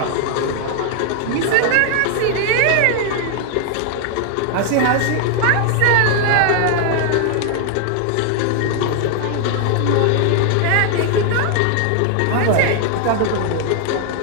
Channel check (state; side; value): different; both; correlation 0.00